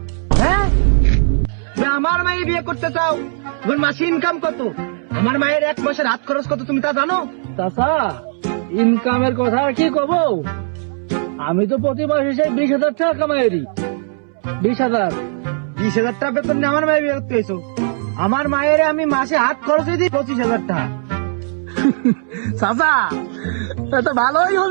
হ্যাঁ, আমার মায়ের বিয়ে করতে চাও? তোমার মাসে ইনকাম কত? আমার মায়ের এক মাসের হাত খরচ কত তুমি তা জানো? চাচা, ইনকামের কথা আর কি কব, আমি তো প্রতি মাসে সেই 20,000 টাকা কামাইরি। 20,000। 20,000 টাকা বেতন নিয়ে আমার মায়ের বিয়ে করতে হয়েছো? আমার মায়ের আমি মাসে হাত খরচ দিই 25,000 টাকা। চাচা, এটা ভালোই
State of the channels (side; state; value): left; silent; 67 dB below the other